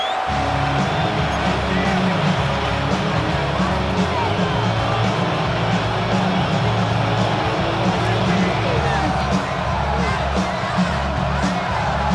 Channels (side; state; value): both; identical; correlation 1.00